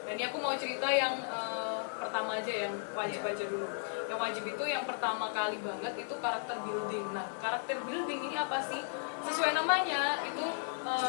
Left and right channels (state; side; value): silent; right; digital silence